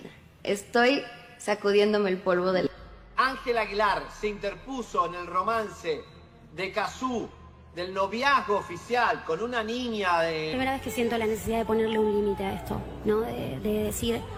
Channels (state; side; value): identical; both; correlation 1.00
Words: Estoy sacudiéndome el polvo del... Ángela Aguilar se interpuso en el romance de Kazoo, del noviazgo oficial con una niña de... Primera vez que siento la necesidad de ponerle un límite a esto, ¿no? De decir,